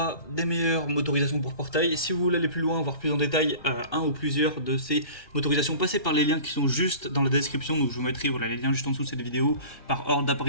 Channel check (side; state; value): right; late; 1.4 ms